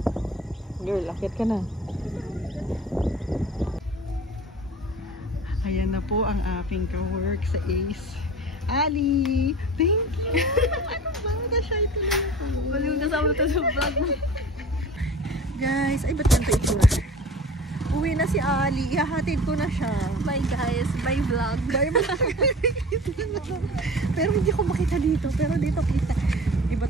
Girl, akit ka na. Ayan na po ang aking ka-work sa Ace. Ali! Thank you! Ano ba? Na-shy to lang ako. Walang kasama to sa vlog mo. Guys, ay ba't ganito itsura? Uwi na si Ali. Ihahatid ko na siya. Bye guys. Bye vlog. Bye vlog. Pero hindi ko makita dito. Pero dito kita. Iba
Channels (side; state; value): both; normal; correlation 0.40